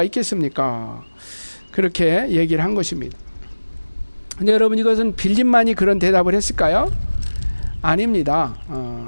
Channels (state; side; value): inverted; both; correlation -1.00